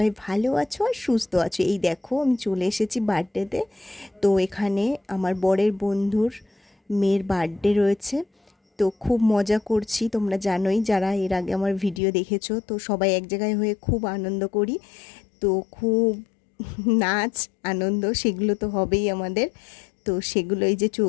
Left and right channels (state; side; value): drops out; right; at 12.0 s